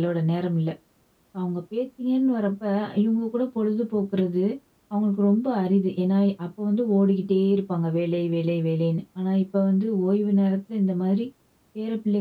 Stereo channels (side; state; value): both; identical; correlation 1.00